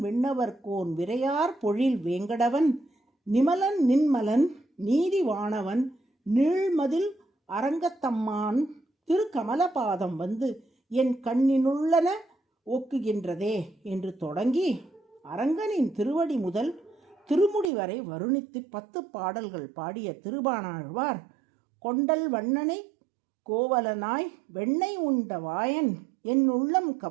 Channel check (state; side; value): drops out; left; at 17.7 s